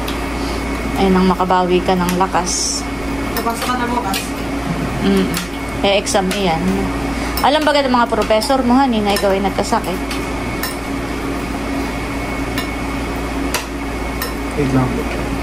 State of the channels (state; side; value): noise; right; rumble, 19 dB below the sound